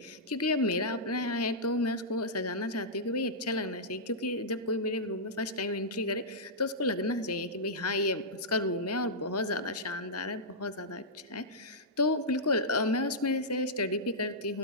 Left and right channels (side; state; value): both; normal; correlation -0.12